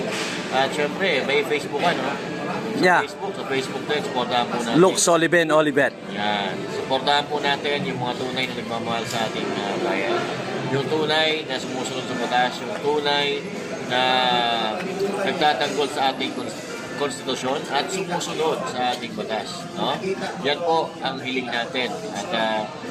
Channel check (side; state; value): both; identical; correlation 1.00